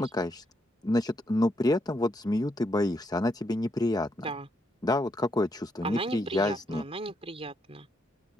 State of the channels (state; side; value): normal; both; correlation 0.77